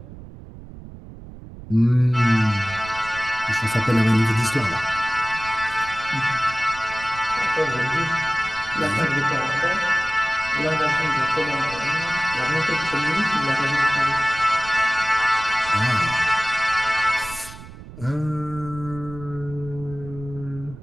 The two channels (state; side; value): noise; right; rumble, 15 dB below the sound